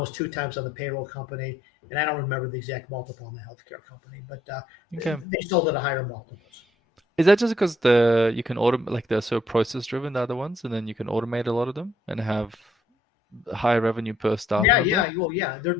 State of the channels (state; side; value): normal; both; correlation 0.69